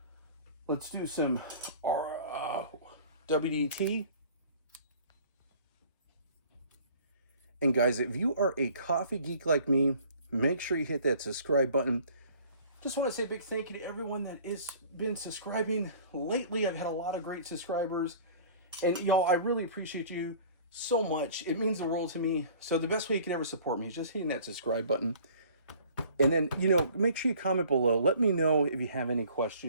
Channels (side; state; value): both; inverted; correlation -0.49